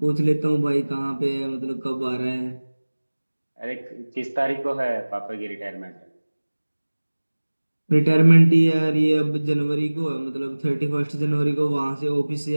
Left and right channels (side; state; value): both; inverted; correlation -1.00